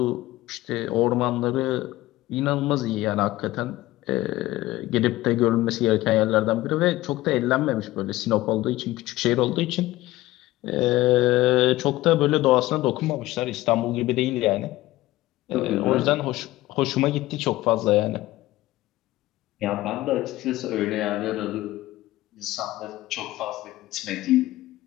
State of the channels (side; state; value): right; quieter; 17.2 dB